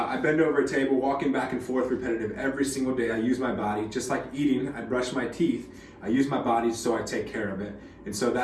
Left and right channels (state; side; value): identical; both; correlation 1.00